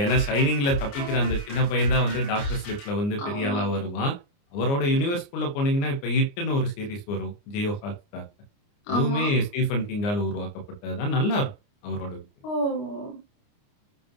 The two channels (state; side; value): late; right; 29 ms